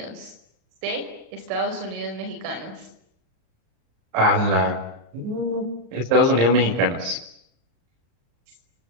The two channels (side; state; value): left; late; 38 ms